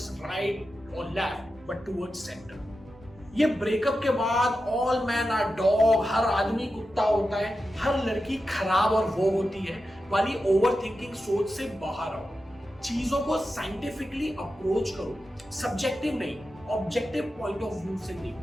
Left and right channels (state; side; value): normal; both; correlation 0.91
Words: right और लेफ्ट बट टुवर्ड्स सेंटर। ये ब्रेकअप के बाद ऑल मैन आर डॉग, हर आदमी कुत्ता होता है, हर लड़की खराब और वो होती है वाली ओवर थिंकिंग सोच से बाहर आओ। चीजों को साइंटिफिकली अप्रोच करो, सब्जेक्टिव नहीं, ऑब्जेक्टिव पॉइंट ऑफ व्यू से नहीं।